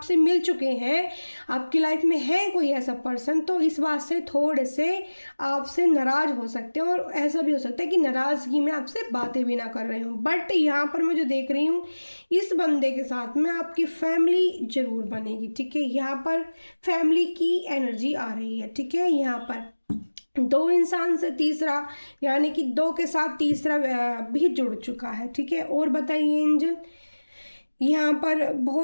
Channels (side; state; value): both; inverted; correlation -1.00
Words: मिल चुके हैं, आपकी लाइफ में है कोई ऐसा पर्सन, तो इस बात से थोड़े से आपसे नाराज़ हो सकते हैं, और ऐसा भी हो सकता है कि नाराज़गी में आपसे बातें भी ना कर रहे हो। बट यहाँ पर मैं जो देख रही हूँ, इस बंदे के साथ में आपकी फैमिली ज़रूर बनेगी, ठीक है। यहाँ पर फैमिली की एनर्जी आ रही है, ठीक है। यहाँ पर दो इंसान से तीसरा, यानी कि दो के साथ तीसरा भी जुड़ चुका है, ठीक है। और बताइए एंजल, यहाँ पर